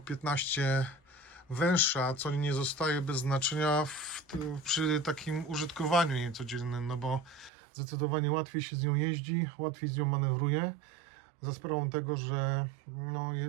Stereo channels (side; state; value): left; drops out; at 7.5 s